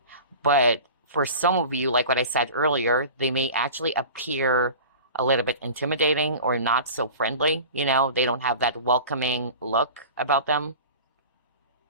But for some of you, like what I said earlier, they may actually appear a little bit intimidating or not so friendly. They don't have that welcoming look about them.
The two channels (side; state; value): both; inverted; correlation -0.37